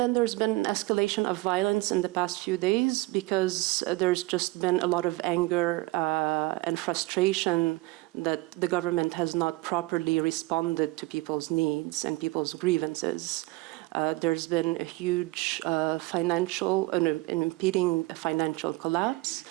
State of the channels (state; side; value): quieter; left; 21.9 dB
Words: there's been escalation of violence in the past few days because there's just been a lot of anger and frustration that the government has not properly responded to people's needs and people's grievances. There's been a huge impeding financial collapse.